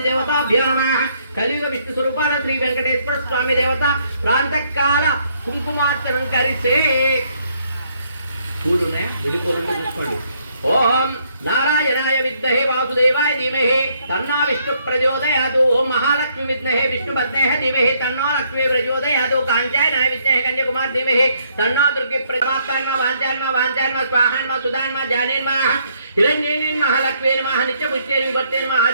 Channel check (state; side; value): inverted; both; correlation -0.70